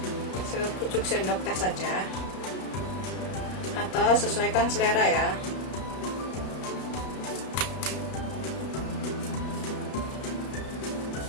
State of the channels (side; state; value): right; late; 32 ms